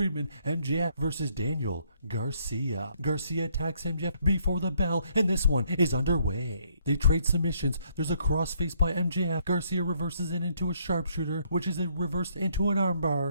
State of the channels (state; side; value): inverted; both; correlation -0.69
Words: MJF versus Daniel Garcia. Garcia attacks MJF before the bell, and this one is underway. They trade submissions. There's a crossface by MJF. Garcia reverses it into a sharpshooter, which is reversed into an